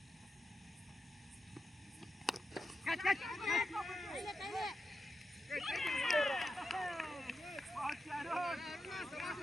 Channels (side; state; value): both; normal; correlation 0.88